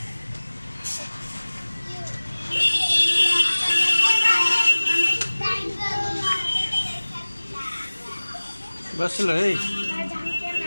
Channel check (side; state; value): both; inverted; correlation -1.00